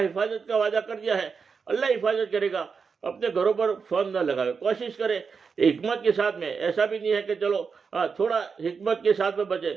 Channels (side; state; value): left; quieter; 5.5 dB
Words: کا وعدہ کر دیا ہے, اللہ حفاظت کرے گا. اپنے گھروں پر فون نہ لگاوے, کوشش کرے حکمت کے ساتھ میں. ایسا بھی نہیں ہے کہ چلو تھوڑا حکمت کے ساتھ میں بچے.